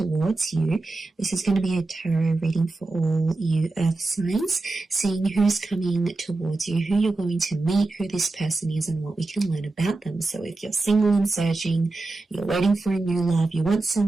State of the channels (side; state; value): left; quieter; 3.3 dB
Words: you. This is going to be a tarot reading for all you Earth signs, seeing who's coming towards you, who you're going to meet, who this person is and what we can learn about them. So if you're single and searching, you're waiting for a new love, you want